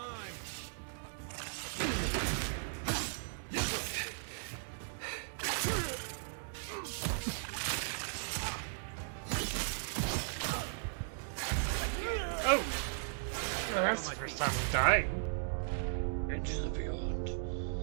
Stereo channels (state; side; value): silent; left; digital silence